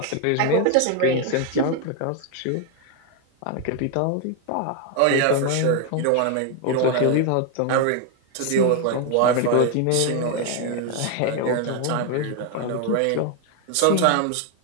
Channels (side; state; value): both; different; correlation 0.01